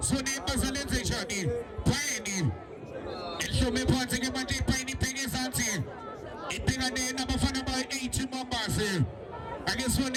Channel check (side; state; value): both; identical; correlation 1.00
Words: zone bazalenze njani phayini ehlome phansi ke manje iphayini ibheke ezansi ibhekane nabafana ba-80 Mambas